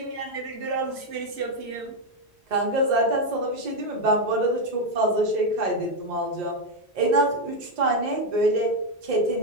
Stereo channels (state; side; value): normal; both; correlation 0.04